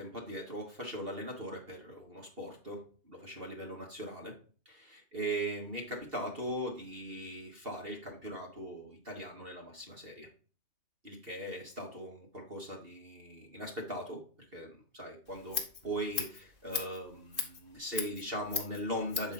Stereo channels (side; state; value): left; late; 2.5 ms